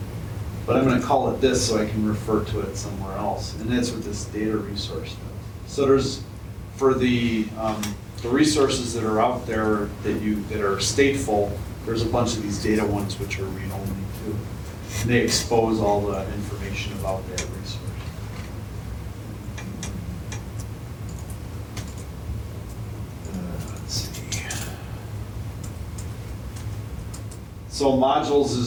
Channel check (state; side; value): identical; both; correlation 1.00